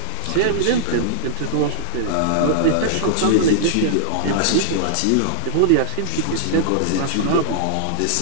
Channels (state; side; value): different; both; correlation -0.02